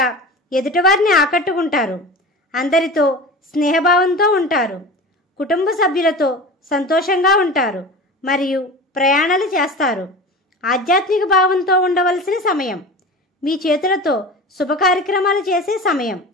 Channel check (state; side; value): normal; both; correlation 0.33